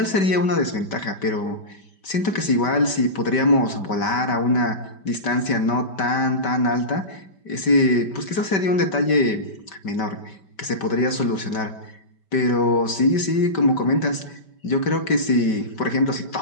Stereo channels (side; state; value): right; late; 5.1 ms